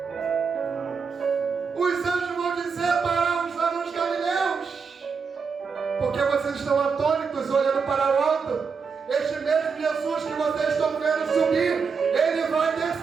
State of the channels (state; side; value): quieter; left; 5.6 dB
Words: Os anjos vão dizer para os varões galileus: porque vocês estão atônitos olhando para o alto? Este mesmo Jesus que vocês estão vendo subir, ele vai